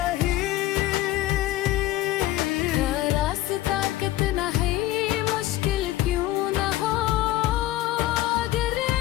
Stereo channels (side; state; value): right; quieter; 15.3 dB